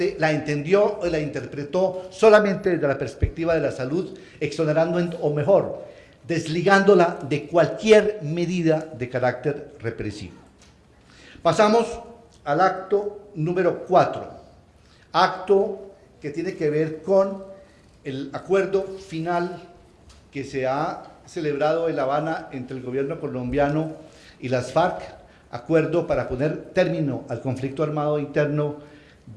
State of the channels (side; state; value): both; identical; correlation 1.00